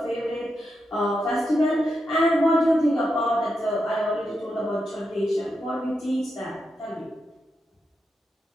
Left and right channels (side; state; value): both; normal; correlation 0.86